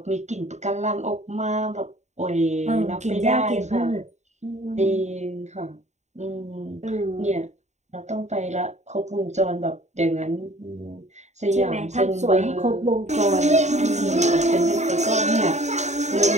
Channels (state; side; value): late; left; 0.33 ms